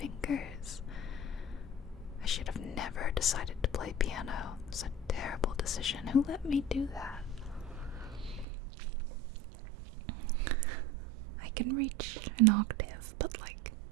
I should have never decided to play piano. It was a terrible decision. Who let me do that? I can reach an octave, but like,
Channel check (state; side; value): drops out; left; at 8.5 s